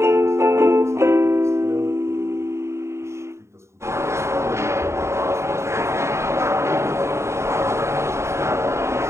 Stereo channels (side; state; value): left; late; 0.13 ms